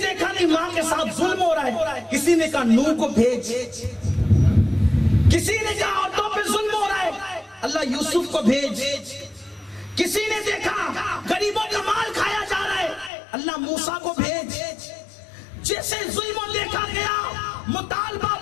نہیں ماں کے ساتھ ظلم ہو رہا ہے، کسی نے کہا نوح کو بھیج۔ کسی نے کہا عورتوں پہ ظلم ہو رہا ہے، اللہ یوسف کو بھیج۔ کسی نے دیکھا غریبوں کا مال کھایا جا رہا ہے، اللہ موسیٰ کو بھیج۔ جیسے ظلم دیکھا گیا مطالبہ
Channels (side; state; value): right; drops out; at 13.1 s